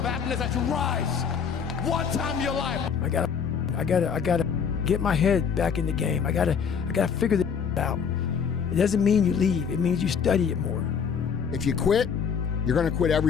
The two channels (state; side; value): quieter; right; 6.8 dB